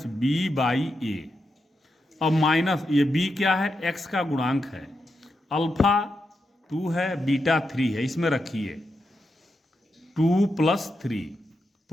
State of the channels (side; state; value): both; normal; correlation 0.85